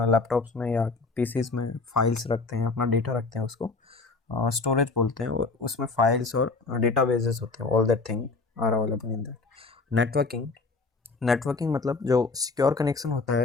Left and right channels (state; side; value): quieter; right; 3.9 dB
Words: लैपटॉप्स में या पीसीज में फाइल्स रखते हैं, अपना डेटा रखते हैं, उसको स्टोरेज बोलते हैं. उसमें फाइल्स और डेटाबेसेस होते हैं. All that thing are available in that. Networking मतलब जो सिक्योर कनेक्शन होता